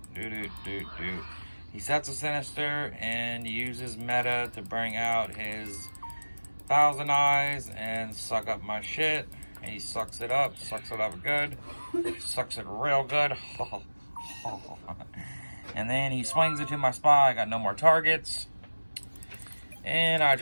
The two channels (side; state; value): both; inverted; correlation -1.00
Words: He sets a Sinister and uses meta to bring out his Thousand Eyes and suck up my shit. And he sucks it up good. Sucks it real good. And then he swings it to my Spy. I got no more targets. And I